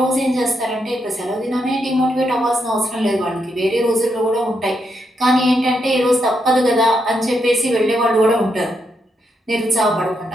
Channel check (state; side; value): normal; both; correlation 0.81